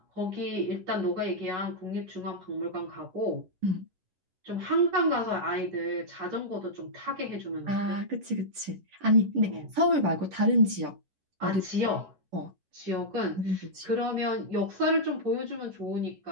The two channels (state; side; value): late; left; 11 ms